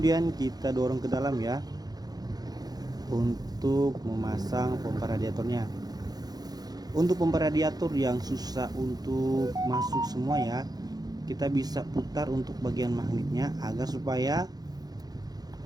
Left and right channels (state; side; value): late; left; 0.19 ms